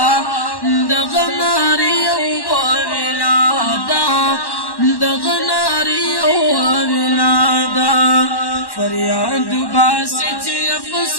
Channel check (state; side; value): late; right; 1.1 ms